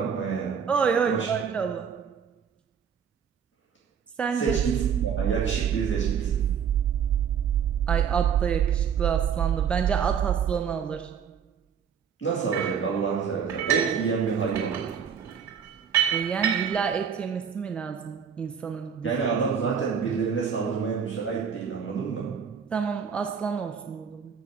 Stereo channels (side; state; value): left; quieter; 7.3 dB